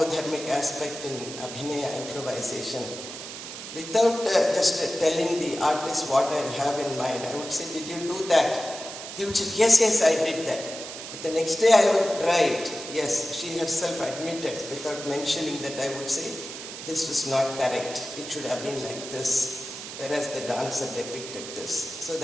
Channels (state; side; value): noise; right; hiss, 10 dB below the sound